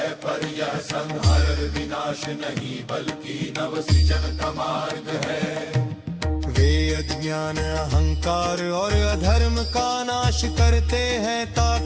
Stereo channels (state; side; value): identical; both; correlation 1.00